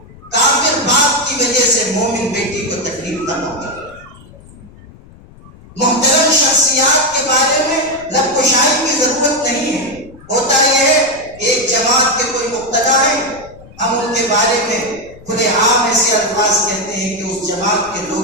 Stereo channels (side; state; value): left; noise; rumble, 22 dB below the sound